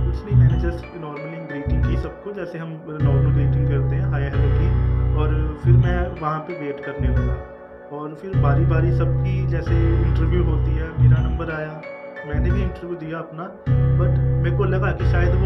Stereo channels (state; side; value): identical; both; correlation 1.00